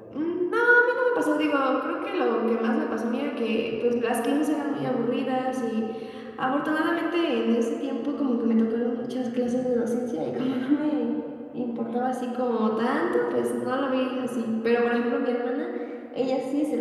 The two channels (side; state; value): both; identical; correlation 1.00